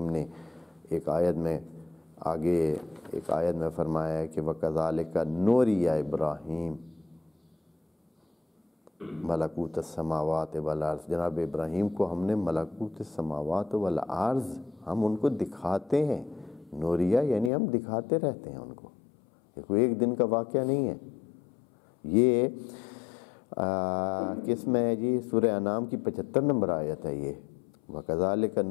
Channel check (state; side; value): drops out; right; at 17.5 s